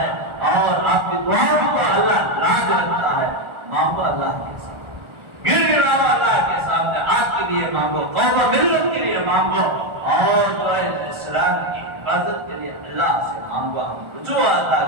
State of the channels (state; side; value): late; left; 1.4 ms